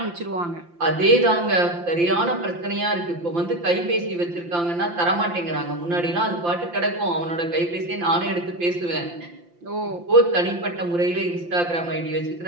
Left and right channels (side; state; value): left; late; 5.8 ms